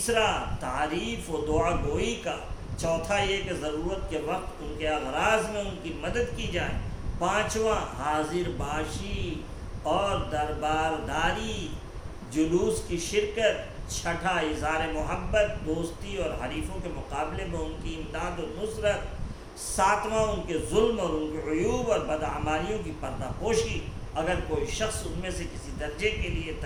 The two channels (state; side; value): identical; both; correlation 1.00